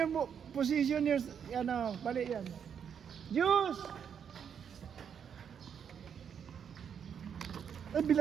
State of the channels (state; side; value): quieter; left; 7.7 dB